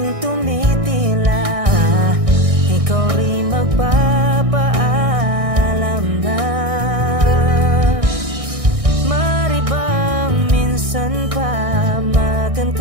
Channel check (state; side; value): late; left; 1.6 ms